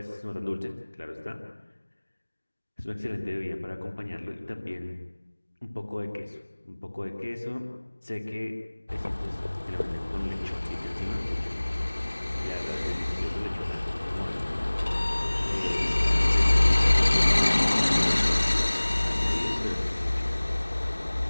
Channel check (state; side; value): inverted; both; correlation -1.00